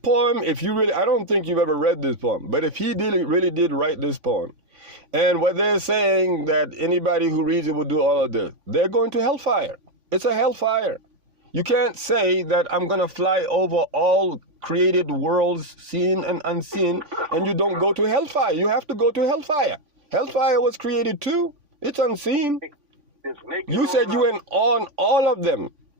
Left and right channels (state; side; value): late; left; 3.5 ms